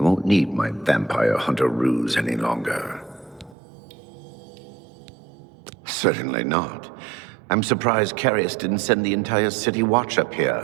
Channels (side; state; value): left; drops out; at 3.6 s